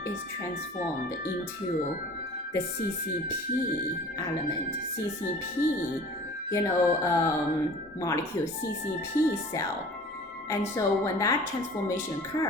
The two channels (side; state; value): both; normal; correlation 0.44